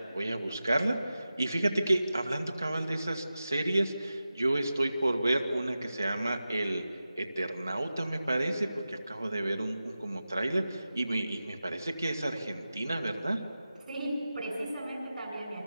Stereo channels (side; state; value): both; inverted; correlation -0.93